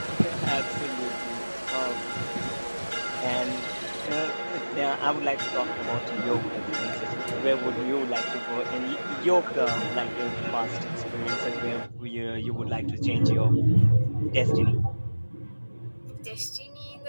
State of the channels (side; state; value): both; inverted; correlation -1.00